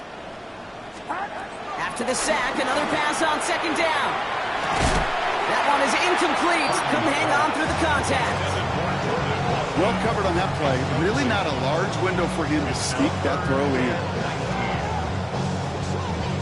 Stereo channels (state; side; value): identical; both; correlation 1.00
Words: After the sack, another pass on second down. That one is incomplete. Couldn't hang on through the contact. Well covered on that play. Really not a large window for him to sneak that throw in.